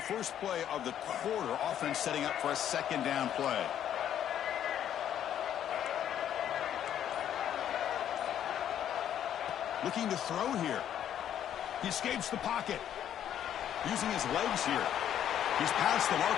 play of the quarter. Offense setting up for a second down play. Looking to throw here. He escapes the pocket. Using his legs here. He's past the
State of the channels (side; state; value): right; quieter; 10.2 dB